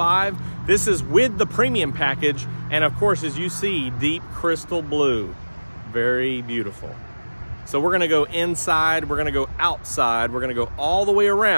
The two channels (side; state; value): both; inverted; correlation -1.00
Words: This is with the premium package. And of course, as you see, deep crystal blue. Very beautiful. So we're gonna go inside, we're gonna go outside, we're gonna go all the way